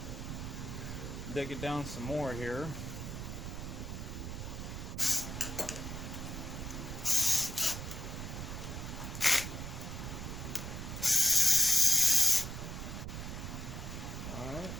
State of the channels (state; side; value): noise; right; rumble, 6 dB below the sound